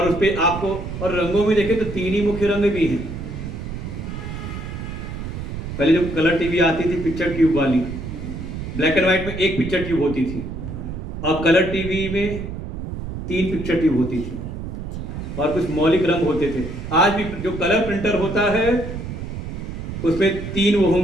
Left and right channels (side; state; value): right; noise; rumble, 7 dB below the sound